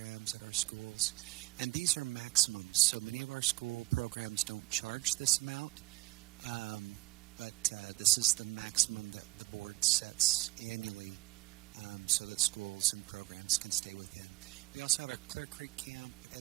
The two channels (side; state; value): left; quieter; 22.6 dB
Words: at our schools. And these are maximums. So many of our school programs don't charge this amount. But this is the maximum that the board sets annually so that schools and programs can stay within. We also have our Clear Creek Camp